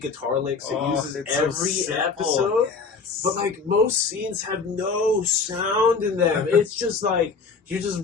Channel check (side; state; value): right; quieter; 4.8 dB